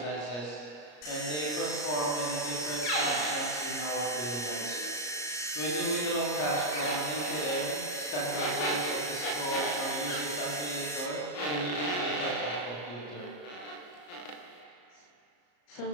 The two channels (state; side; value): late; right; 33 ms